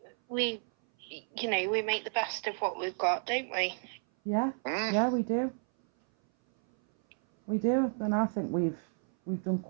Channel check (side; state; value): left; silent; 57 dB below the other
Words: we make the best of what we've got, don't we? Yeah, yeah, we do. We do, and I think we've done